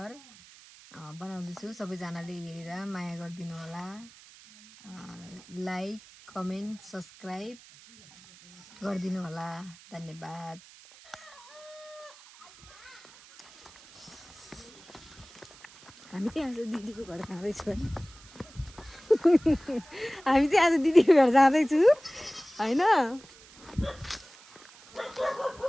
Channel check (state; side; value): noise; right; hiss, 22 dB below the sound